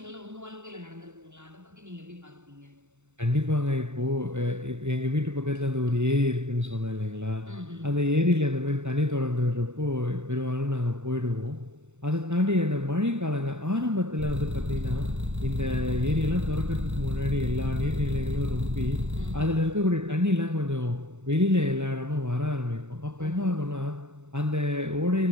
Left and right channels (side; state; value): left; late; 0.83 ms